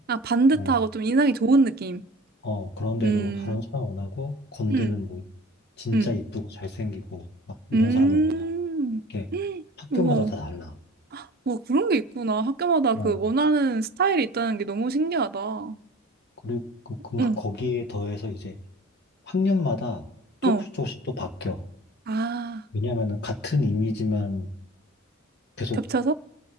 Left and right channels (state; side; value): normal; both; correlation 0.43